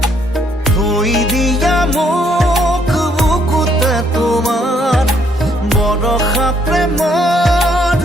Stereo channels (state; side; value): normal; both; correlation 0.69